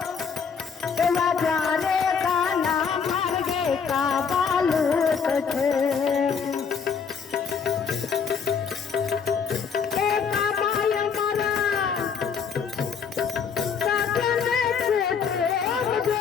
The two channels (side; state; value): right; quieter; 6.3 dB